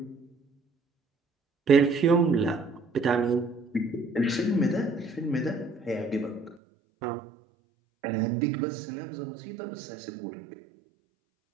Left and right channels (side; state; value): left; drops out; at 6.6 s